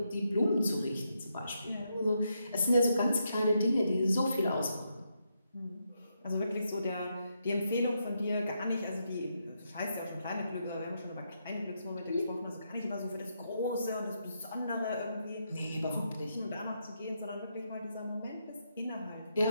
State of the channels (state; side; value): inverted; both; correlation -0.81